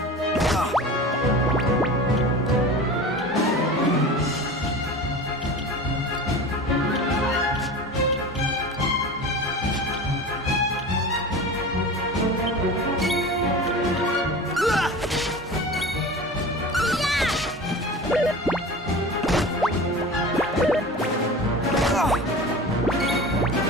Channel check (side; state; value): both; normal; correlation 0.34